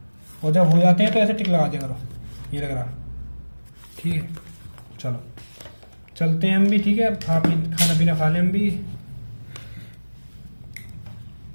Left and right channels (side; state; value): both; inverted; correlation -1.00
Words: और जब हो जाते हैं तो ऐसे टिक लगा दिया करो, ये लग रहा, ठीक है। चलो चलते हैं हम भी, ठीक है। खाना पीना खा लें हम भी।